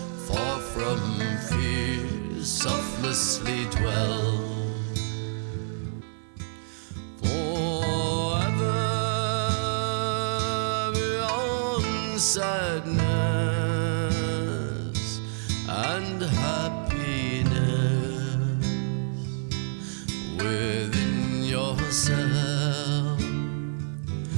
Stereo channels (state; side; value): silent; left; 56 dB below the other